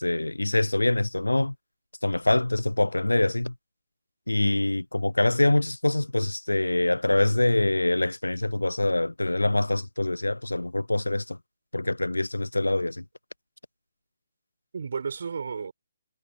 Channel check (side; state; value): both; inverted; correlation -1.00